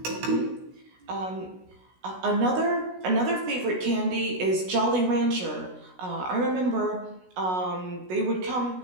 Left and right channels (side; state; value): left; late; 16 ms